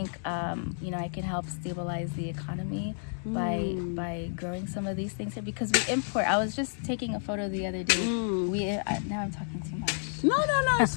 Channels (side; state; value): right; silent; 58 dB below the other